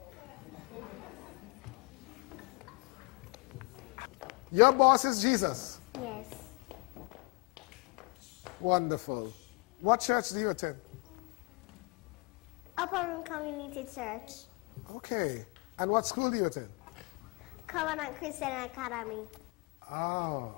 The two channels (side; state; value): right; quieter; 29.8 dB